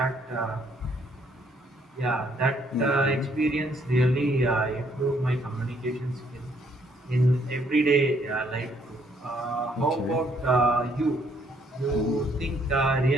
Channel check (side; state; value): both; normal; correlation 0.68